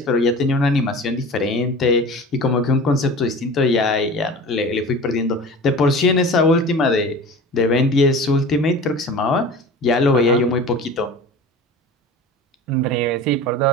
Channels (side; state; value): both; normal; correlation 0.37